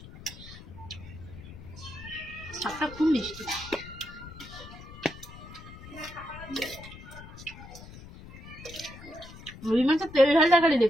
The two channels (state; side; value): noise; left; rumble, 15 dB below the sound